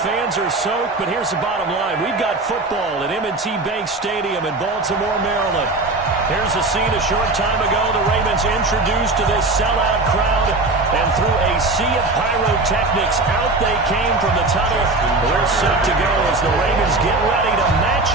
fans are soaked, but here's the bottom line. We've got football at M&T Bank Stadium in Baltimore, Maryland. Here's a scene a short time ago. The Ravens introduced to this sellout crowd, and through a sea of pyrotechnics, out they came from the tunnel. We're set to go as the Ravens get ready to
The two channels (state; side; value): quieter; left; 3.1 dB